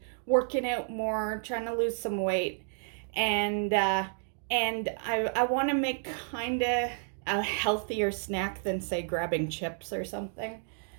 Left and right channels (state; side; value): silent; left; digital silence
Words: working out more, trying to lose some weight, and I want to make kind of a healthier snack than say grabbing chips or something.